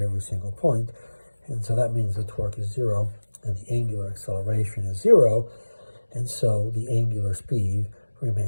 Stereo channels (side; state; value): both; inverted; correlation -1.00